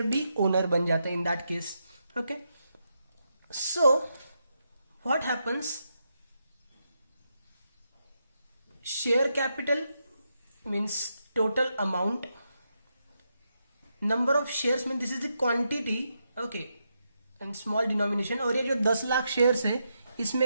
बी ओनर बन जाता है in that case. Okay, so what happens, share capital means total amount, number of shares mean this is the quantity, okay, and small denomination. और ये जो 10 लाख शेयर्स है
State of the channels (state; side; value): inverted; both; correlation -0.83